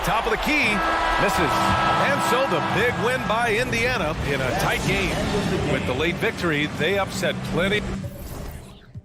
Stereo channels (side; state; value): both; identical; correlation 1.00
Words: of the key. Misses. And so the big win by Indiana in a tight game. With the late victory, they upset plenty.